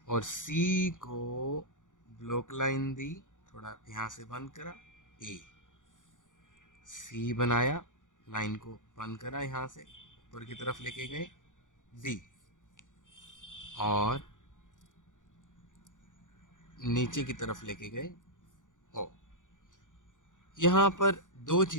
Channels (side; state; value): right; late; 0.87 ms